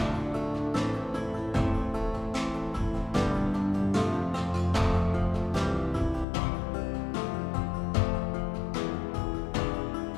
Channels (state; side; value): drops out; right; at 6.2 s